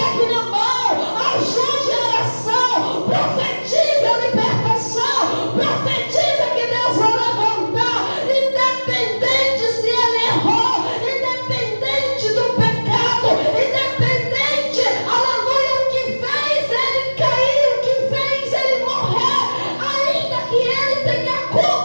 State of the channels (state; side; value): inverted; both; correlation -1.00